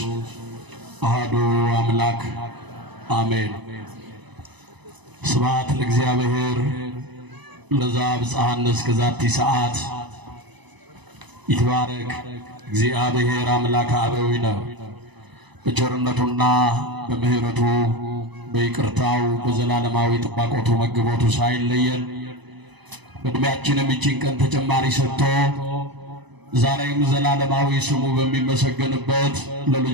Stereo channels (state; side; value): late; left; 1.0 ms